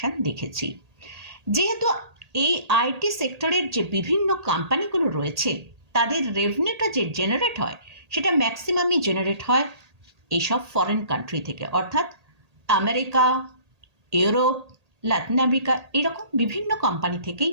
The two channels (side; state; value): left; late; 1.8 ms